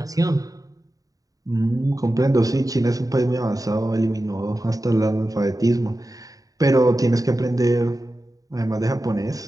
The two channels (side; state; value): left; late; 0.17 ms